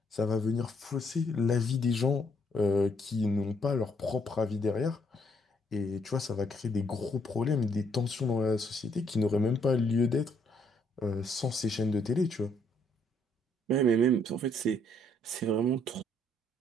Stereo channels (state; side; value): normal; both; correlation 0.70